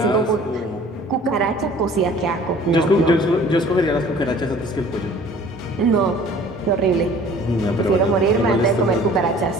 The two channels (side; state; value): both; normal; correlation 0.50